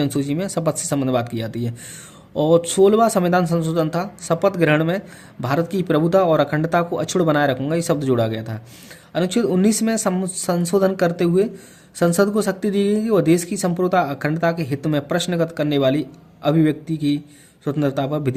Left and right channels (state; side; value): identical; both; correlation 1.00